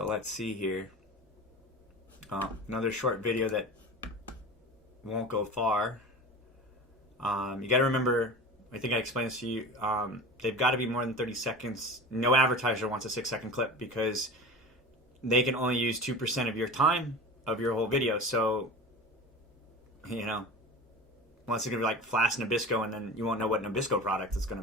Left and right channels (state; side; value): normal; both; correlation 0.33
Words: let's see here. Another short video that won't go far. You got to remember, I think I explained this to you, they've got to be more than 30 seconds. No advertiser wants a 6-second clip because they can only use 2% of your time of your whole video. So, you know, unless it's going to be like Flash Nabisco, and then you won't know what Nabisco product it's going